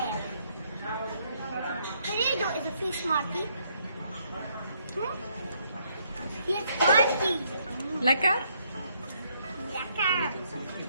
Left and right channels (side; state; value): both; inverted; correlation -0.71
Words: تريدو إذا في سمارتي؟ في سمارتي. لك؟ لك.